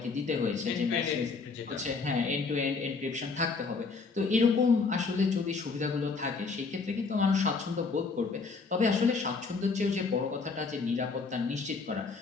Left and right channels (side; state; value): right; quieter; 4.5 dB